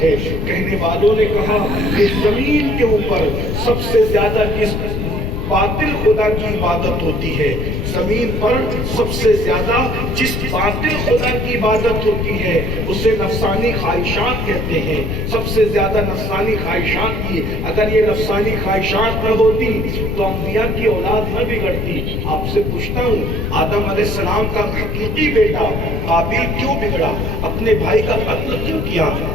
ہے۔ کہنے والوں نے کہا کہ زمین کے اوپر سب سے زیادہ جس باطل خدا کی عبادت ہوتی ہے، زمین پر سب سے زیادہ جس باطل خدا کی عبادت ہوتی ہے اسے نفسانی خواہشات کہتے ہیں۔ سب سے زیادہ نفسانی خواہشات کی، اگر یہ نفسانی خواہشات نہ ہوتی تو انبیاء کی اولاد نہ بگڑتی۔ آپ سے پوچھتا ہوں، آدم علیہ السلام کا حقیقی بیٹا قابیل کیوں بگڑا؟ اپنے بھائی کا قتل کیوں کیا؟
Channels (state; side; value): noise; left; rumble, 1 dB below the sound